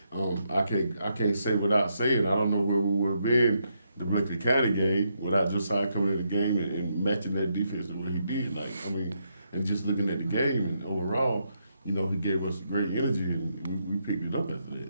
I can't say without saying, I don't know where we would have been the Berkeley County game without Josiah coming in the game and matching that defense the way he did. Like, I mean, and just looking at the game and overall, you know, he gave us great energy and we picked it up after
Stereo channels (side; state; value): both; inverted; correlation -0.79